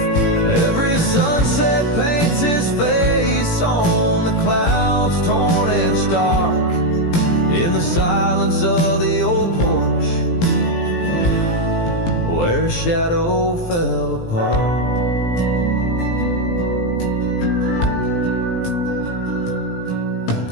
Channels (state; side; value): late; right; 17 ms